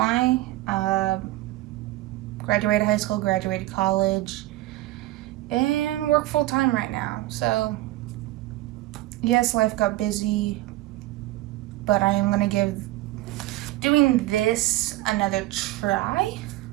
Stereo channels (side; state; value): left; quieter; 17.1 dB